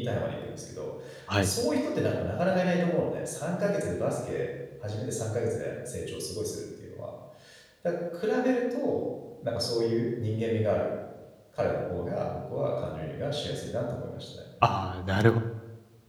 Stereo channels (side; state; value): both; identical; correlation 1.00